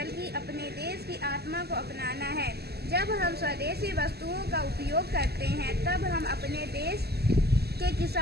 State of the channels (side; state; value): left; late; 0.47 ms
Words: अपने देश की आत्मा को अपनाना है। जब हम स्वदेशी वस्तुओं का उपयोग करते हैं, तब हम अपने देश के